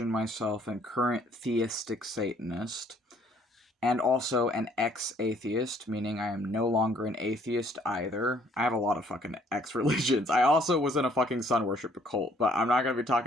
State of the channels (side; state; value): both; normal; correlation 0.62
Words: myself and current theistic Satanist, and also an ex-atheist, meaning I am no longer an atheist either. I have a lot of fucking ex-religions. I also was in a fucking sun worship cult, but I'm not gonna be